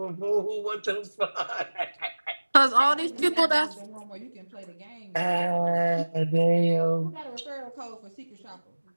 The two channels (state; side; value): inverted; both; correlation -1.00